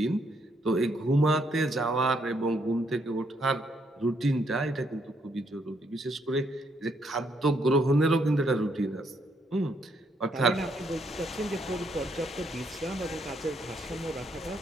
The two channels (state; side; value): normal; both; correlation 0.73